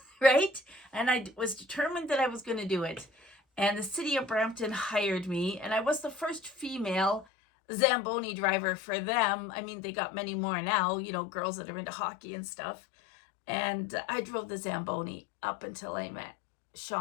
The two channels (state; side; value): drops out; right; at 7.2 s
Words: right? And I was determined that I was going to do it. And the city of Brampton hired me, and I was the first female Zamboni driver for them. I mean, they got many more now, girls that are into hockey and stuff. And I drove the Zamboni up until I met